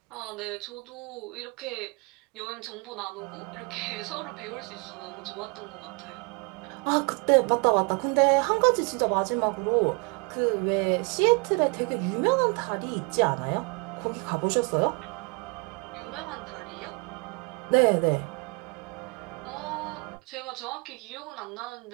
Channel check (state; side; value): quieter; left; 31.7 dB